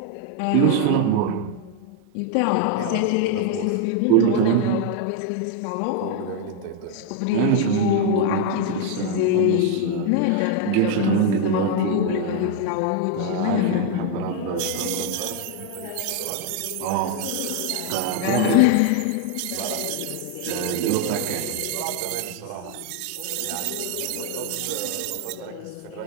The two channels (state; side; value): different; both; correlation 0.00